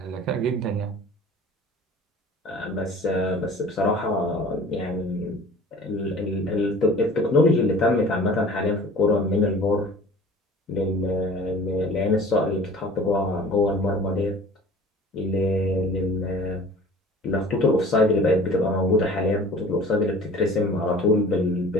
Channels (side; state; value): both; normal; correlation 0.45